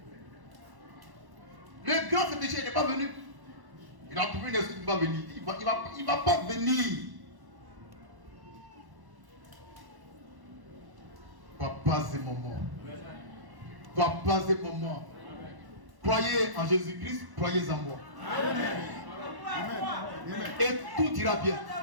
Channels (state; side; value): late; left; 1.1 ms